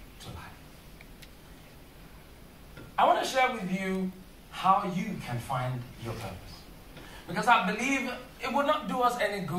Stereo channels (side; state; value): both; identical; correlation 1.00